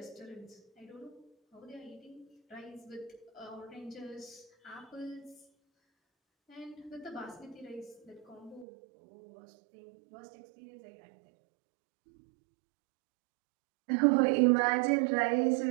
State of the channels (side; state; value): left; drops out; at 8.7 s